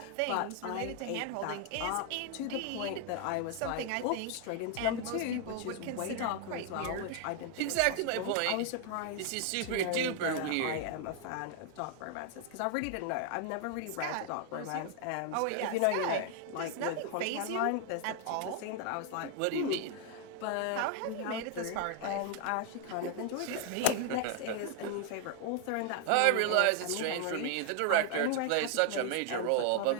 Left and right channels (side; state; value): both; different; correlation 0.00